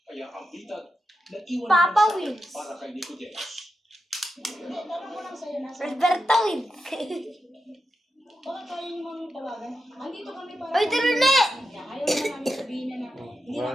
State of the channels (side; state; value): both; normal; correlation 0.88